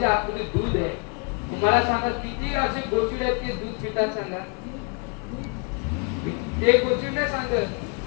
आतमध्ये दूध आहे. मला सांगा किती असे गोचिड आहेत ते दूध पितात सांगा. ते गोचिड नाही सांगत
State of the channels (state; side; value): quieter; right; 34.9 dB